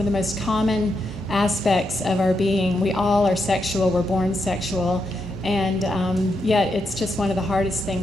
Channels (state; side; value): normal; both; correlation 0.82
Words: the most common aspects of our being. We all are sexual. We're born sexual. And yet it's just one of the hardest